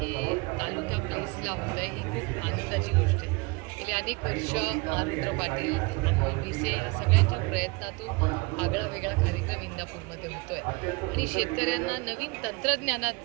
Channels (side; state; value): left; quieter; 26.9 dB